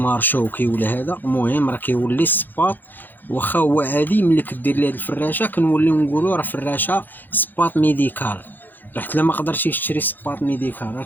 شوكي ولا هذا، المهم راه كيولي السباط واخا هو عادي. ملي كدير ليه هاد الفراشه كنوليو نقولوا راه فراشه سباط ميديكال. راه حتى ما قدرتيش تشري سباط ميديكال، راه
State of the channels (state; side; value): late; right; 0.088 ms